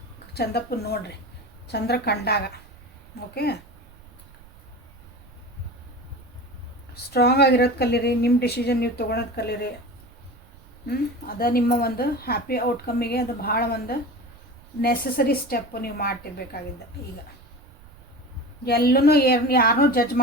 ಚಂದಪ್ಪನ ನೋಡ್ರಿ ಚಂದ್ರ ಕಂಡಾಗ. ಓಕೆ, ಸ್ಟ್ರಾಂಗ್ ಆಗಿರೋದು ಕಲೀರಿ. ನಿಮ್ಮ ಡಿಸಿಷನ್ ನೀವು ತೊಗೊಳೋದು ಕಲೀರಿ. ಅದು ನಿಮ್ಮ ಒಂದು ಹ್ಯಾಪಿ ಔಟ್ಕಮ್ಮಿಗೆ ಅದು ಭಾಳ ಒಂದು ನೆಸಸರಿ ಸ್ಟೆಪ್ಪು ನೀವು ಮಾಡ್ತಿರ್ಬೇಕಾಗಿದ್ದ. ಈಗ ಎಲ್ಲೂ ಯಾರನ್ನೂ ಜಡ್ಜ್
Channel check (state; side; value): noise; right; rumble, 24 dB below the sound